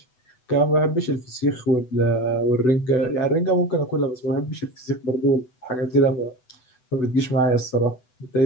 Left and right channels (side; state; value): right; late; 8.0 ms